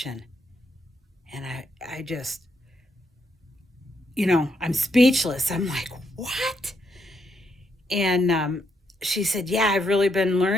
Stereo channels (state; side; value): normal; both; correlation 0.78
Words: And I just, I'm speechless. I'm like, "What?" And she said, "Yeah, I've really been